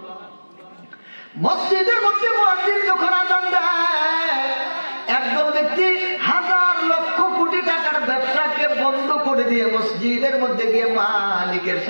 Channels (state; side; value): inverted; both; correlation -1.00